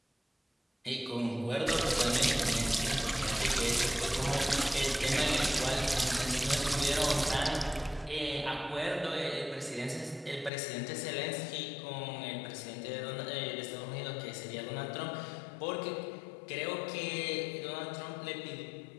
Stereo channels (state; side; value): drops out; right; at 10.5 s